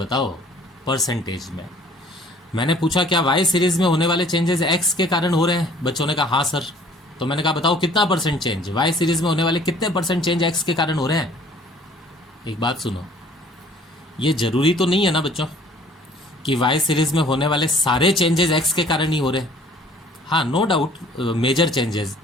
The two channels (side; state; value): both; normal; correlation 0.54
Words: परसेंटेज में। मैंने पूछा क्या वाई सीरीज़ में होने वाले चेंजेस एक्स के कारण हो रहे हैं, बच्चों ने कहा हाँ सर, तो मैंने कहा बताओ कितना परसेंट चेंज, वाई सीरीज में होने वाले कितने परसेंट चेंज एक्स के कारण हो रहे हैं। एक बात सुनो, ये जरूरी तो नहीं है ना बच्चों कि वाई सीरीज में होने वाले सारे चेंजेस एक्स के कारण ही हो रहे हैं। हाँ no doubt major changes